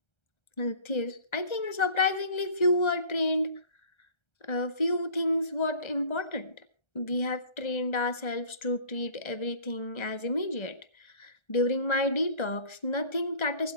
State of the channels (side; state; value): right; late; 1.3 ms